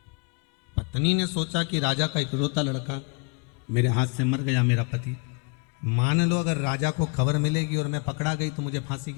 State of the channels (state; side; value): quieter; right; 33.2 dB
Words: पत्नी ने सोचा कि राजा का इकलौता लड़का मेरे हाथ से मर गया, मेरा पति। मान लो अगर राजा को खबर मिलेगी और मैं पकड़ा गई तो मुझे फांसी